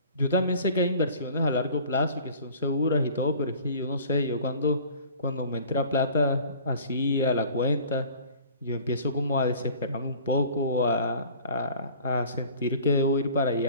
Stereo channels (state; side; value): inverted; both; correlation -0.46